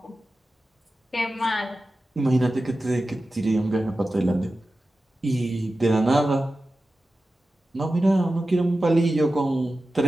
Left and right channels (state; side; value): normal; both; correlation 0.94